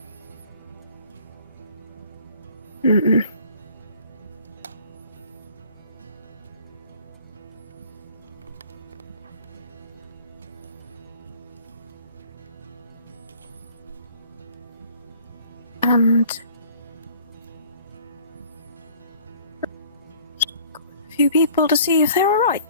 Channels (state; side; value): inverted; both; correlation -0.52